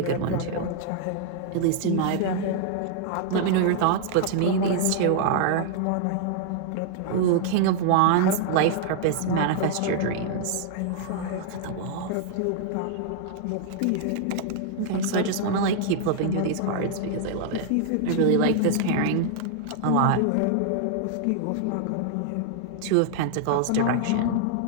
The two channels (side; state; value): both; different; correlation -0.01